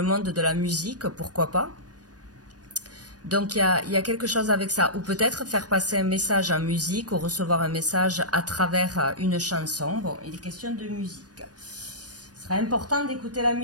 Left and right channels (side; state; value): left; late; 0.68 ms